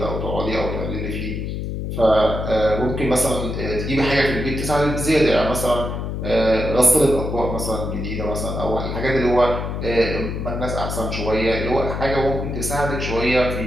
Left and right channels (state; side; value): noise; left; hum, 4 dB below the sound